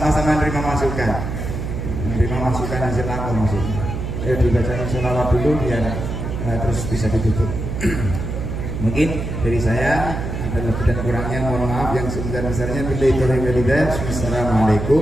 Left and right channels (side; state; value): right; noise; hum, 5 dB below the sound